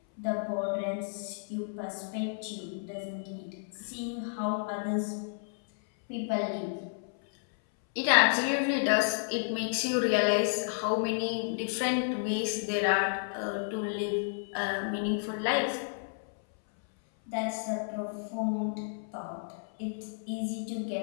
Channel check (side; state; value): right; silent; 57 dB below the other